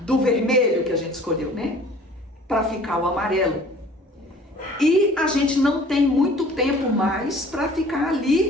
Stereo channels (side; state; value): both; normal; correlation 0.50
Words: vermelho que a gente escolheu, né? Para ficar o amarelo. E a gente não tem muito tempo mais para ficar